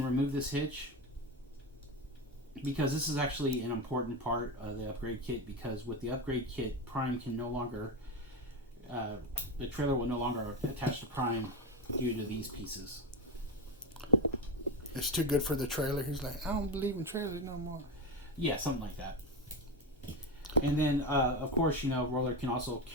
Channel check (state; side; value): normal; both; correlation 0.17